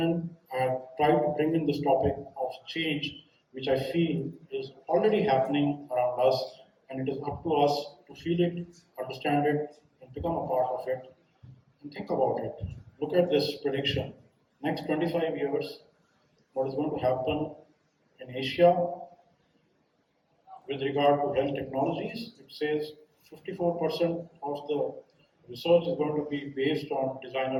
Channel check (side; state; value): both; identical; correlation 1.00